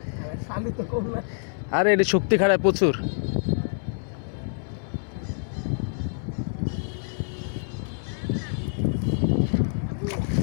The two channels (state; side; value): silent; right; 61 dB below the other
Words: আরে এটি শক্তি খারাপ প্রচুর।